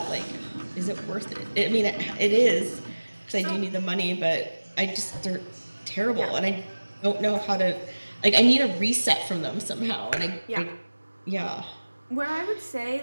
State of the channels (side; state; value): both; inverted; correlation -1.00